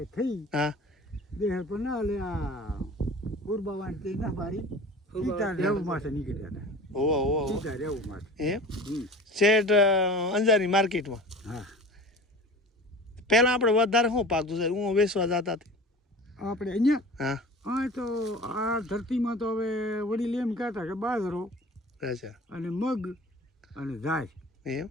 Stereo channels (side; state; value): both; normal; correlation 0.38